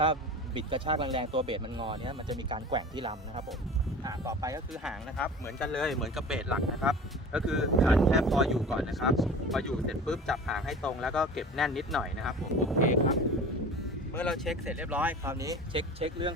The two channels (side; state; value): both; normal; correlation 0.38